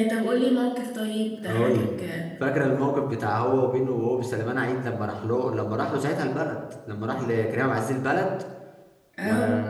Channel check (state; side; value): identical; both; correlation 1.00